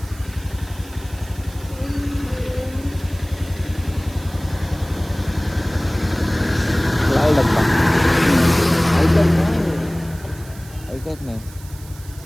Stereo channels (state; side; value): noise; right; hiss, 21 dB below the sound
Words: लाल डब्बा ऐकत नाही.